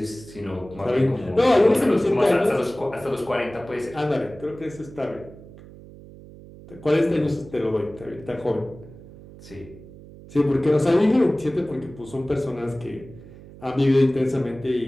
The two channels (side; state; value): right; noise; hum, 19 dB below the sound